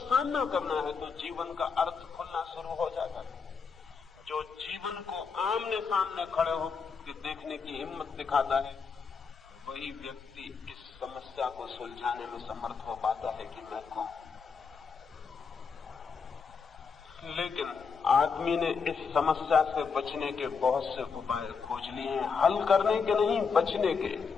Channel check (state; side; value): quieter; right; 5.5 dB